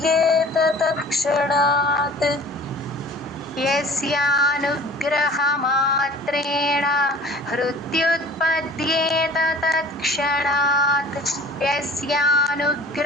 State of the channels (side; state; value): both; normal; correlation 0.46